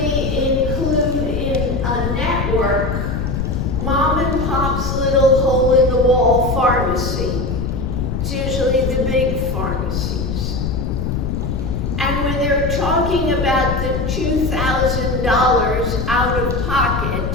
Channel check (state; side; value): noise; left; rumble, 2 dB below the sound